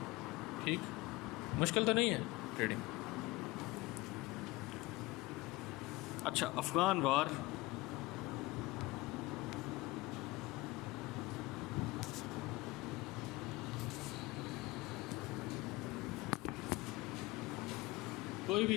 ٹھیک, مشکل تو نہیں ہے ٹریڈنگ. اچھا, افغان وار کوئی بھی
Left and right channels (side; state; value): right; quieter; 20.9 dB